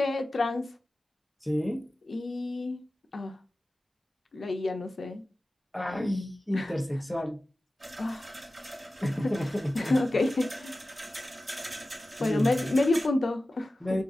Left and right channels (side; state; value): both; normal; correlation 0.95